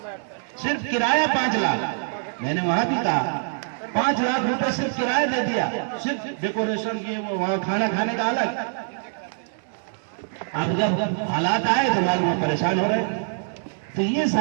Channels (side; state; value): left; silent; digital silence